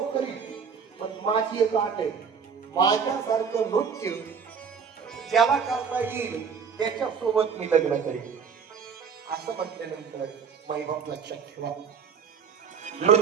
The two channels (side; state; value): left; quieter; 6.5 dB